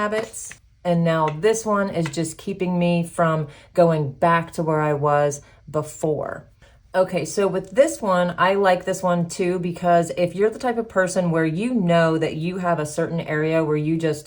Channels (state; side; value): identical; both; correlation 1.00